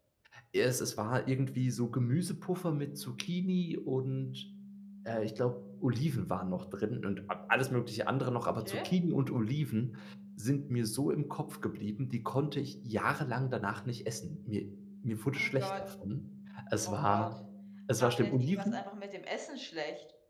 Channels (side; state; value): both; identical; correlation 1.00